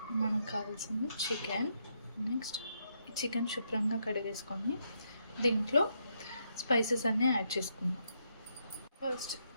మనకు కావాల్సింది చికెన్. నెక్స్ట్ చికెన్ శుభ్రంగా కడిగేసుకొని దీంట్లో స్పైసెస్ అన్నీ యాడ్ చేసుకుందాం. First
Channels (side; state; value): both; inverted; correlation -0.78